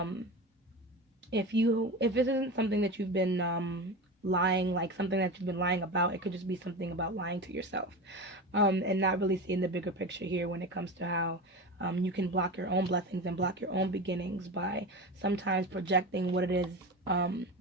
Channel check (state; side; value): normal; both; correlation 0.26